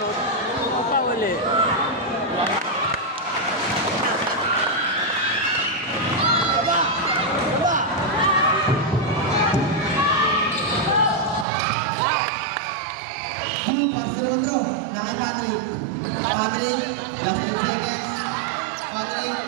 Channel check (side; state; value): left; drops out; at 11.5 s